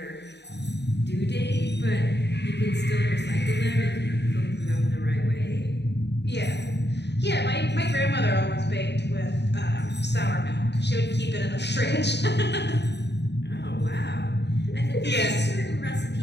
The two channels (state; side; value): late; right; 0.50 ms